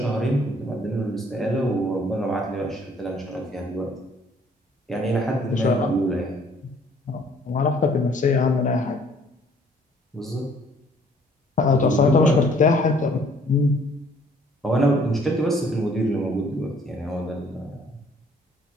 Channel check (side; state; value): both; normal; correlation 0.60